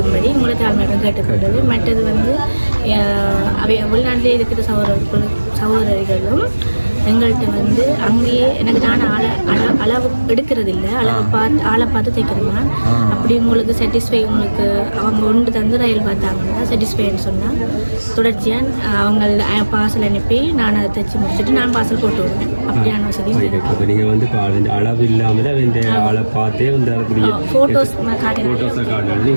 உங்களை தாழ்மையிடம் கேட்டுக்கொண்டது. மற்றது வந்து வெளிநாட்டிலே இருக்கிற சகோதரிகளும் எங்கள்கிட்ட வந்து அங்கேயே எனக்கு நான் அளவு எடுக்கிறதில்ல, ஆளை பார்த்து தைக்கிறேன். அப்படி உங்களுக்கு சாட்டிஸ்ஃபை, உங்களுக்கு அவங்க ஒன்று தந்து ரயில் பார்த்தாங்கன்னா சாட்டிஸ்ஃபைன்னு சொன்னால் தொடர்ச்சியாக அவங்க பார்சல் அனுப்பி நான் அதை தைச்சி முடிச்சுட்டு நான் பார்சல் போட்டு விடுவேன். அப்படியான வசதி நீங்கள் வந்து அளவு இல்லாமல் ஆளை பார்த்தே வந்து ஃபோட்டோஸை காட்டணும்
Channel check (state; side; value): inverted; both; correlation -1.00